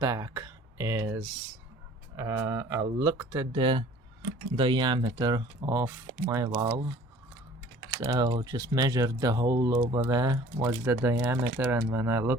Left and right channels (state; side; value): normal; both; correlation 0.50